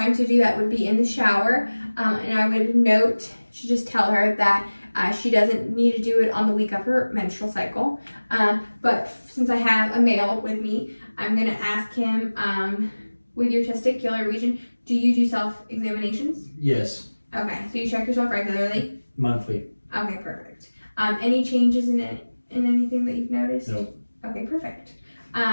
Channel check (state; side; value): inverted; both; correlation -1.00